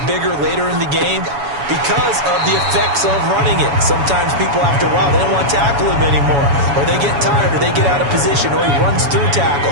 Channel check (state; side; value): late; left; 7.1 ms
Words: bigger later in the game because of the effects of running it. Sometimes people, after a while, they don't want to tackle him anymore, or they get tired, or they get out of position, or he runs through